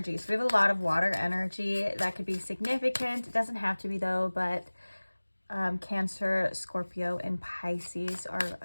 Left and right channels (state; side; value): inverted; both; correlation -1.00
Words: So we have a lot of water energy. That could be significant. It doesn't have to be though, but Cancer, Scorpio, and Pisces are